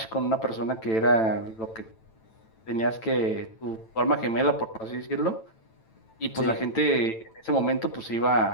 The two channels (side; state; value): right; late; 9.0 ms